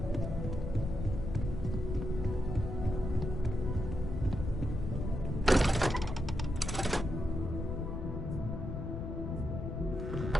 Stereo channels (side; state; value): left; noise; rumble, 4 dB below the sound